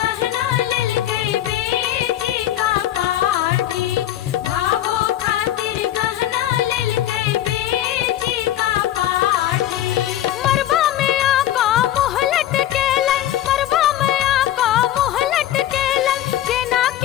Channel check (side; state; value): right; quieter; 12.8 dB